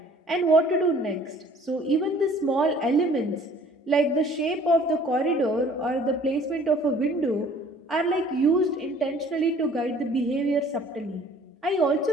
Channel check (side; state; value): both; normal; correlation 0.54